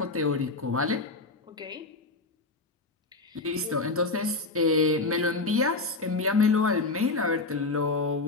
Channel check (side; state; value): right; quieter; 3.5 dB